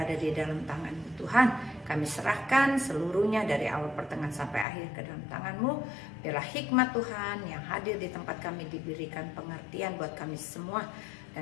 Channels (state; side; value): drops out; right; at 4.7 s